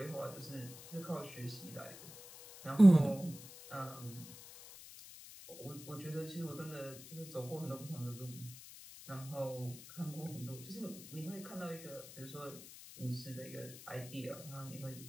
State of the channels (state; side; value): noise; left; hiss, 15 dB below the sound